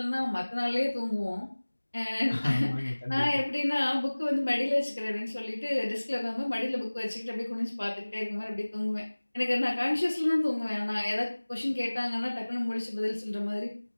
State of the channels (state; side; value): inverted; both; correlation -1.00